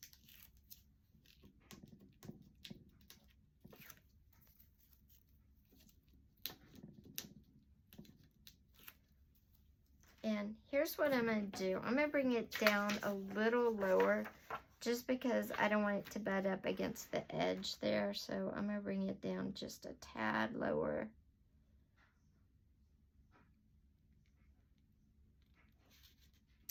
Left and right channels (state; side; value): identical; both; correlation 1.00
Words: And here's what I'm going to do. I'm going to bring it down a little lower just because I don't want it to butt up against the edge there. So I'm going to bring it down just a tad lower.